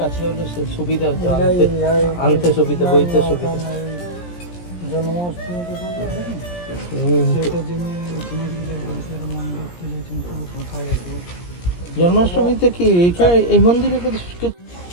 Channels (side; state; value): right; late; 17 ms